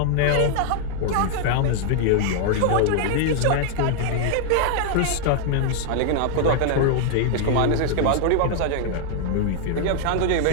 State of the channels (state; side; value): different; both; correlation 0.00